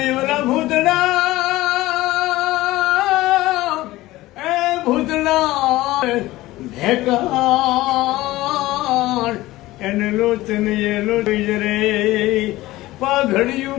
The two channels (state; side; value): quieter; right; 17.6 dB